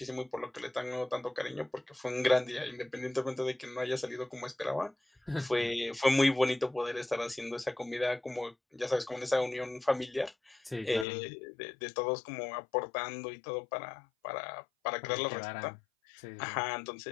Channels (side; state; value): right; drops out; at 11.1 s